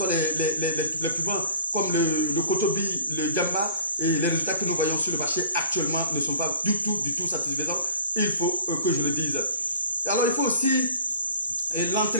les piments comme le Kotobi, le Gamba, et les résultats que nous voyons sur le marché actuellement ne sont pas du tout satisfaisants. Il faut que je le dise. Alors, il faut aussi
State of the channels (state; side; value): inverted; both; correlation -0.45